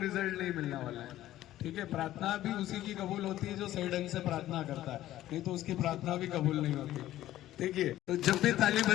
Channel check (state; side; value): quieter; right; 14.0 dB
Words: नहीं मिलने वाला है। ठीक है, प्रार्थना भी उसी की कबूल होती है जो सही ढंग से प्रार्थना करता है, नहीं तो उसकी प्रार्थना भी कबूल नहीं होती। देखिए, तो जब भी ताली